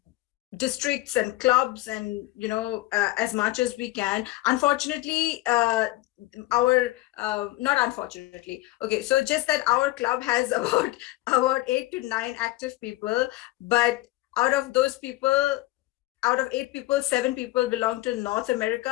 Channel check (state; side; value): quieter; right; 18.3 dB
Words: districts and clubs, and as much as we can. Unfortunately, not unfortunately, okay, so just that our club has about 8 to 9 active people, but out of 8 people, 7 people belong to North